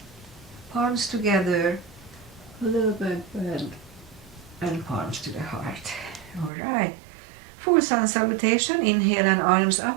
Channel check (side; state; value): left; drops out; at 6.5 s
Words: Palms together. A little back bend and palms to the heart. Alright. Full sun salutation. Inhale and arms